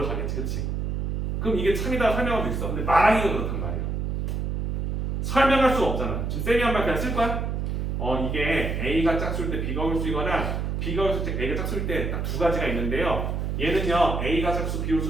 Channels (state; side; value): noise; right; hum, 1 dB below the sound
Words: 그렇지? 그럼 이게 참이다 설명할 수 있어. 근데 말하기가 그렇단 말이야. 설명할 수가 없잖아. 지금 쌤이 한 말 그냥 쓸 거야? 이게 A가 짝수일 때 B가 홀수이거나 B가 홀수일 때 A가 짝수일 때 딱 두 가지가 있는데요. 얘는요 A가 짝수 B